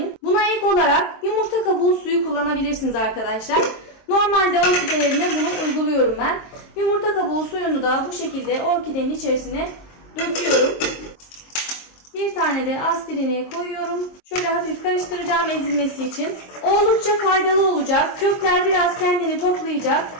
Buna ek olarak yumurta kabuğu suyu kullanabilirsiniz arkadaşlar. Normalde orkidelerine bunu uyguluyorum ben. Yumurta kabuğu suyunu da bu şekilde orkidenin içerisine döküyorum. Bir tane de aspirini koyuyorum. Şöyle hafif karıştıracağım ezilmesi için. Oldukça faydalı olacak. Kökler biraz kendini toplayacak.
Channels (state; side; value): late; right; 22 ms